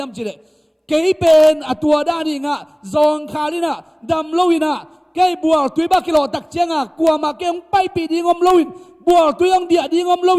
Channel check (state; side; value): identical; both; correlation 1.00